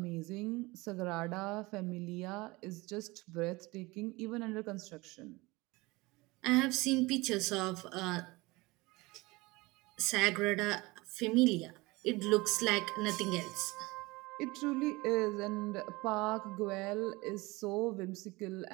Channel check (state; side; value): quieter; left; 22.7 dB